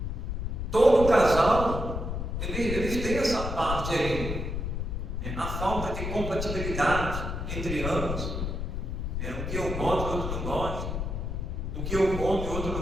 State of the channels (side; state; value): left; noise; rumble, 3 dB below the sound